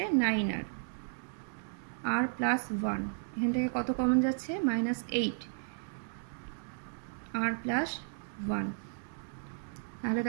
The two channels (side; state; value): left; silent; digital silence